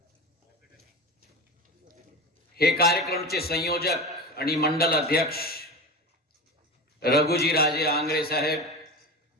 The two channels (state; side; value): normal; both; correlation 0.27